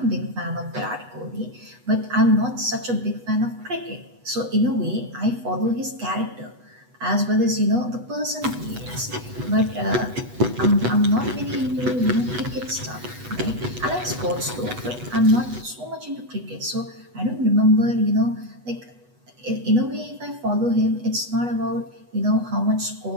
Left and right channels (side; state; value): left; late; 8.1 ms